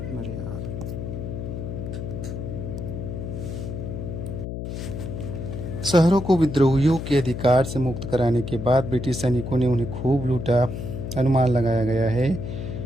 शहरों को विद्रोहियों के अधिकार से मुक्त कराने के बाद ब्रिटिश सैनिकों ने उन्हें खूब लूटा। अनुमान लगाया गया है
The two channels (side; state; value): left; noise; hum, 6 dB below the sound